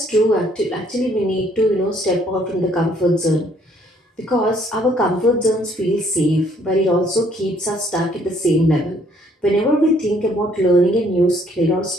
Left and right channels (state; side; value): normal; both; correlation 0.64